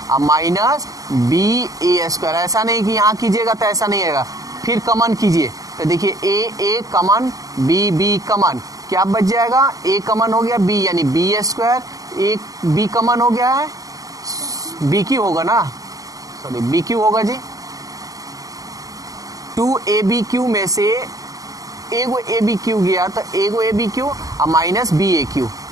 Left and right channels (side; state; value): left; late; 0.17 ms